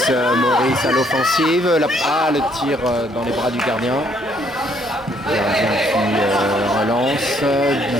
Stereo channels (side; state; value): both; normal; correlation 0.67